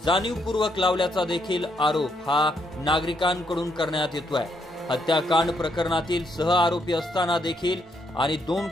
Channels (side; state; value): both; normal; correlation 0.75